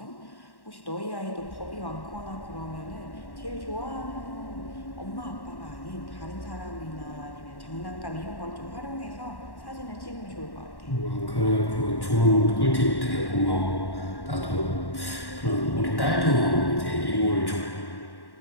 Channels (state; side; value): late; right; 1.1 ms